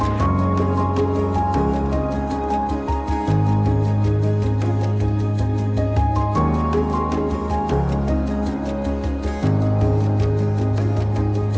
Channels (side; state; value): both; identical; correlation 1.00